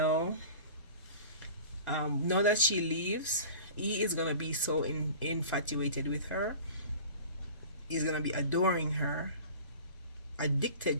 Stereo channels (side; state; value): both; inverted; correlation -0.40